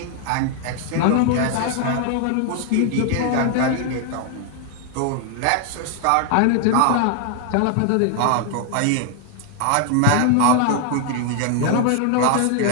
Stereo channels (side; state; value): both; different; correlation 0.00